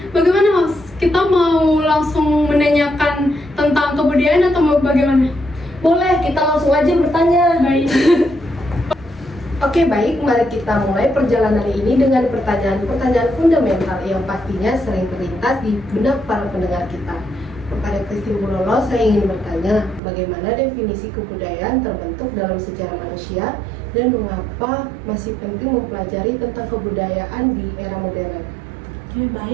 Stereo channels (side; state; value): left; drops out; at 20.0 s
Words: bagaimana, host? Kita mau langsung menanyakan tentang kebudayaan atau mau bagaimana? Boleh, kita langsung aja bertanya. Baik. Oke, baik, mari kita mulai perjalanan ini dengan pertanyaan-pertanyaan fundamental yang pastinya sering terlintas di benak para pendengar kita. Kepada Christine Bulele, saya ingin bertanya, bagaimana definisi kebudayaan terbentuk dalam sejarah manusia dan mengapa masih penting mempelajari tentang kebudayaan di era modern? Oke,